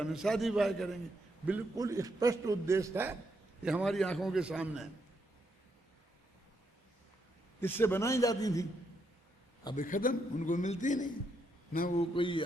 में शादी विवाह करेंगे। बिल्कुल स्पष्ट उद्देश्य था, ये हमारी आंखों के सामने है। इससे बनाई जाती थी, अब खत्म, उनको मिलती नहीं। न वो कोई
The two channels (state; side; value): normal; both; correlation 0.78